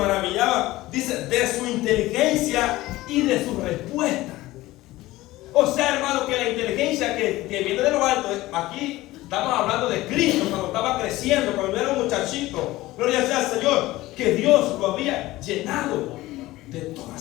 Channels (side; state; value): right; quieter; 17.8 dB